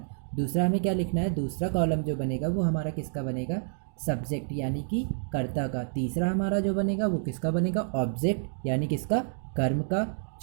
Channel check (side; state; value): left; silent; digital silence